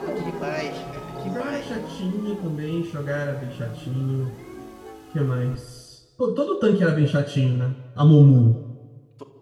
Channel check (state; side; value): identical; both; correlation 1.00